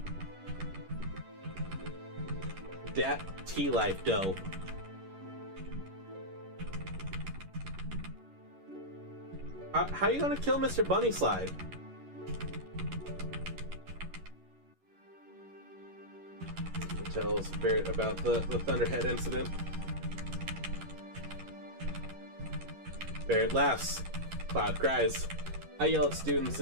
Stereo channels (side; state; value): left; late; 11 ms